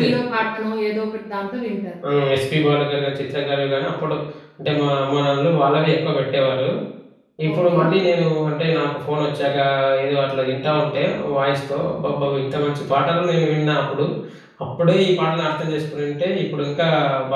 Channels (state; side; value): identical; both; correlation 1.00